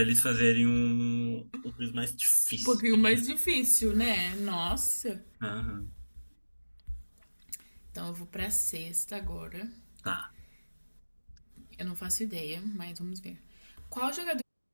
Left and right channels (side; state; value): both; inverted; correlation -1.00